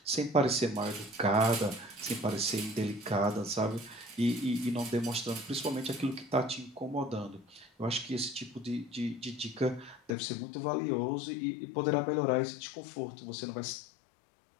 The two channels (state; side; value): drops out; right; at 10.1 s